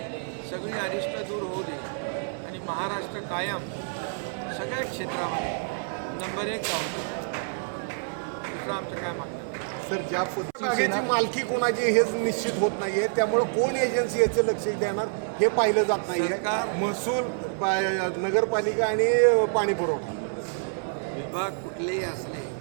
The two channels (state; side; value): silent; left; 60 dB below the other